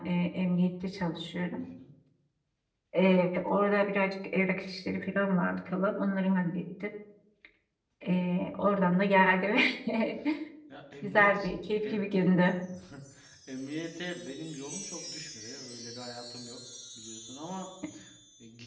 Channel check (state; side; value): identical; both; correlation 1.00